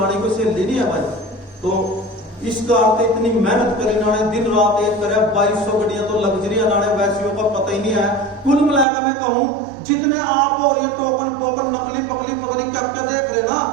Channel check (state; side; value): drops out; left; at 8.8 s